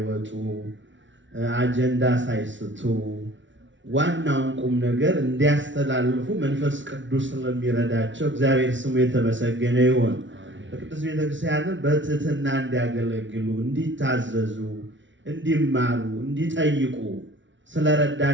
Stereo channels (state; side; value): late; left; 0.55 ms